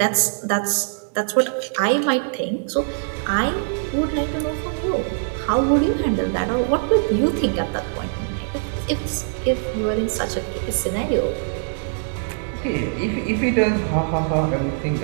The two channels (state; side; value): silent; left; digital silence